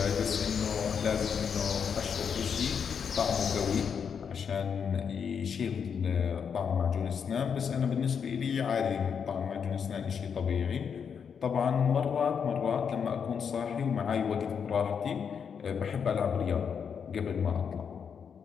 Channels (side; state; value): right; quieter; 6.9 dB